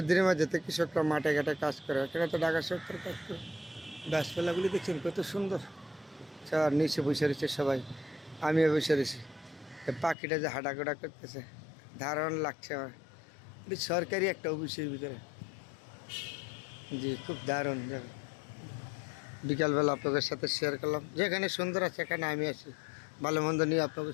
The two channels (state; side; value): drops out; right; at 10.2 s